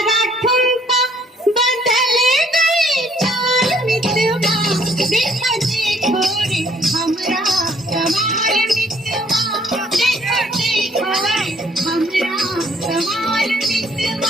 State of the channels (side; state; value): both; normal; correlation 0.62